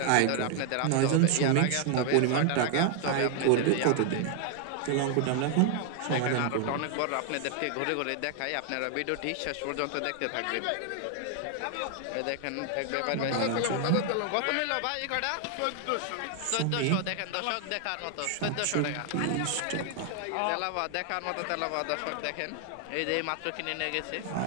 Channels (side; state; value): both; different; correlation 0.00